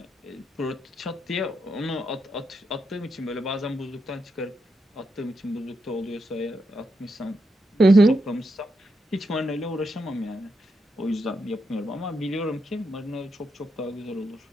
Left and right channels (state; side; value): normal; both; correlation 0.83